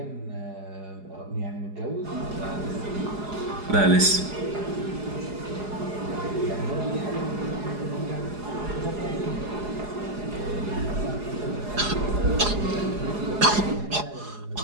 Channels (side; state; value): left; late; 4.8 ms